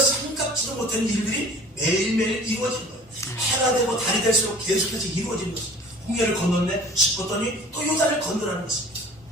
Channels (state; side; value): normal; both; correlation 0.47